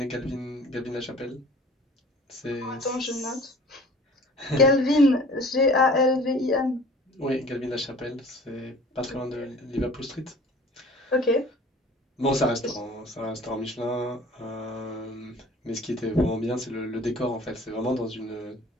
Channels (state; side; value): normal; both; correlation 0.46